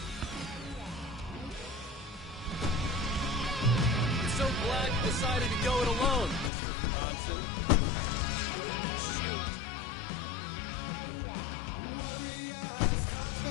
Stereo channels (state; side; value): drops out; right; at 6.5 s